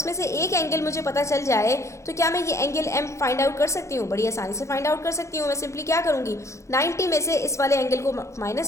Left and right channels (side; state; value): right; late; 0.14 ms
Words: से एक एंगल मुझे पता चल जाए तो क्या मैं ये एंगल एम फाइंड आउट कर सकती हूँ? बड़ी आसानी से फाइंड आउट कर सकती हूँ। मैं सिंपली क्या करूँगी, 90 में से इस वाले एंगल को